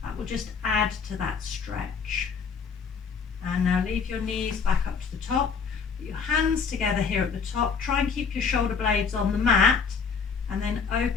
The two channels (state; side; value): quieter; right; 5.7 dB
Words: that will just add to that stretch. And now leave your knees back up to the top, put your hands together here at the top, try and keep your shoulder blades on the mat, and then